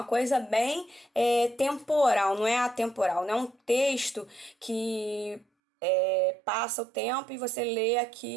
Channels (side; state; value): left; drops out; at 5.5 s